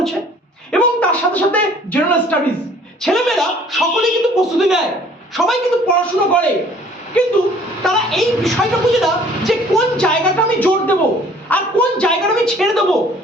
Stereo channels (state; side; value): normal; both; correlation 0.55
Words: এবং তার সাথে সাথে জেনারেল স্টাডিজ। ছেলেমেয়েরা সকলেই কিন্তু প্রস্তুতি নেয়, সবাই কিন্তু পড়াশোনা করে, কিন্তু তারা এই বিষয়টা বুঝে না যে কোন জায়গাটা আমি জোর দেব আর কোন জায়গাটা আমি ছেড়ে দেবো,